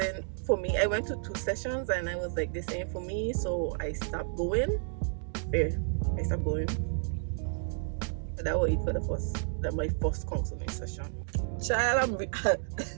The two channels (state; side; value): silent; left; digital silence